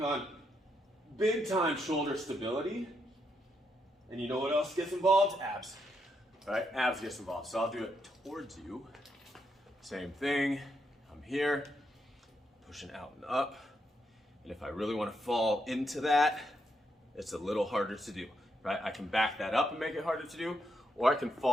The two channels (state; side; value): normal; both; correlation 0.80